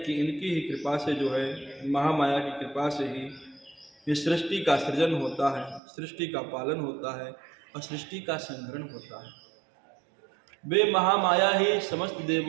कि इनकी ही कृपा से जो है, महामाया की कृपा से ही ये सृष्टि का सृजन होता है, सृष्टि का पालन होता है और सृष्टि का संहरण होता है। वे महामाया ही समस्त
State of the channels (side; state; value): left; drops out; at 5.8 s